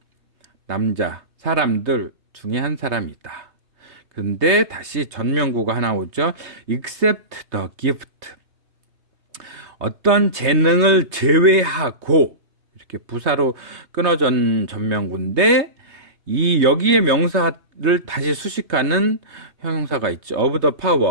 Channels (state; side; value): late; left; 3.3 ms